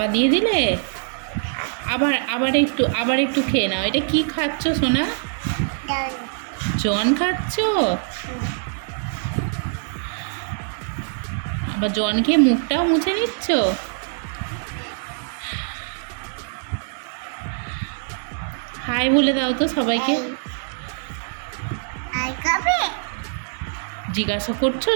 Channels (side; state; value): left; silent; 56 dB below the other